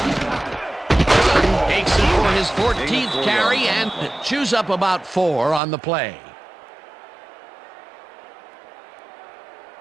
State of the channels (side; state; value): left; drops out; at 5.6 s